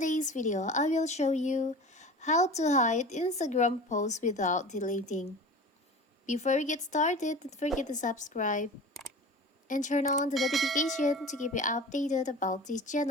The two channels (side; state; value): both; normal; correlation 0.36